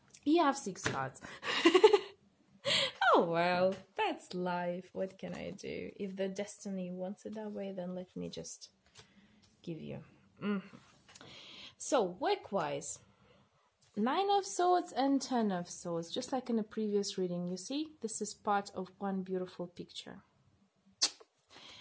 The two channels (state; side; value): identical; both; correlation 1.00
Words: You have 6 cards. Oh well, that's life. What can I do? If the destiny wants it that way, then let me just give you. So, work-wise, 9 of Swords and 10 of Swords, just like in the previous reading. You see, this is part of one beautiful picture.